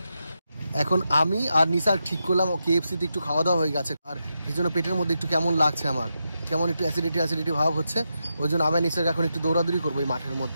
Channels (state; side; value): inverted; both; correlation -0.86